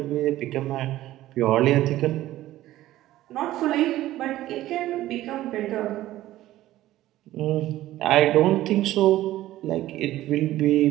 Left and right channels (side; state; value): left; quieter; 14.9 dB